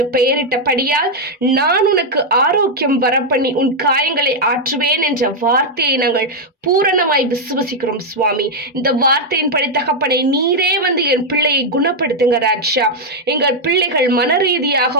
பெயரிட்டபடியால் நான் உனக்கு ஆரோக்கியம் வரப்பண்ணி உன் காயங்களை ஆற்றுவேன் என்ற வார்த்தையை நாங்கள் பூரணமாய் விசுவசிக்கிறோம் சுவாமி. இந்த வார்த்தையின்படி தகப்பனை நீரே வந்து என் பிள்ளையை குணப்படுத்துங்க ராஜா. எங்கள் பிள்ளைகள் மன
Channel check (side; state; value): both; normal; correlation 0.00